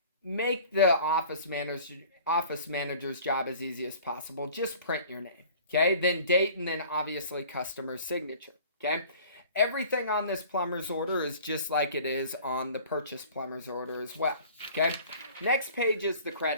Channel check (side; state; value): both; inverted; correlation -0.47